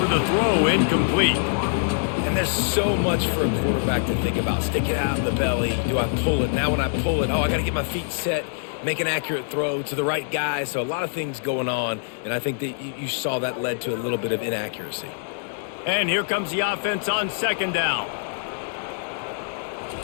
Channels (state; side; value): silent; right; 62 dB below the other